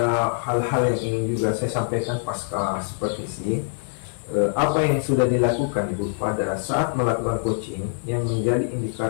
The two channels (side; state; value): right; silent; digital silence